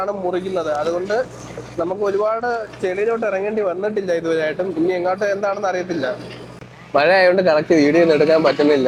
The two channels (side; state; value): both; identical; correlation 1.00